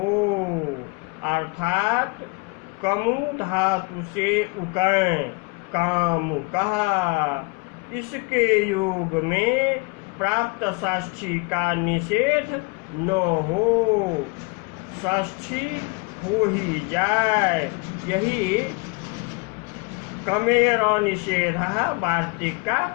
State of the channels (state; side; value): quieter; right; 28.8 dB